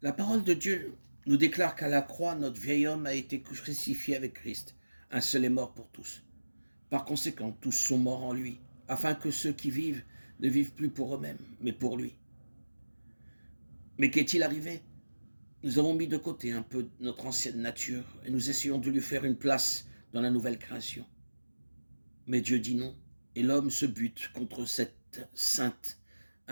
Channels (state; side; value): inverted; both; correlation -1.00